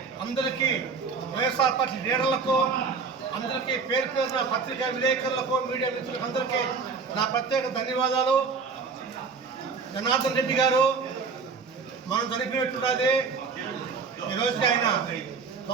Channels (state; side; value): quieter; left; 5.1 dB